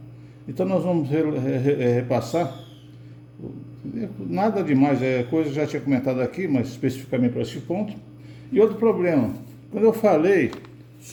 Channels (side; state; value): both; identical; correlation 1.00